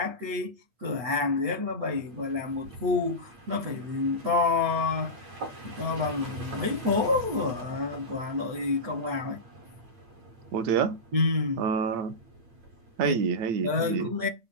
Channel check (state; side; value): late; left; 8.7 ms